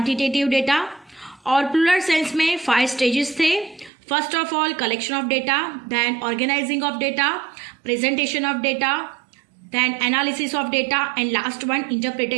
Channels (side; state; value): left; drops out; at 3.9 s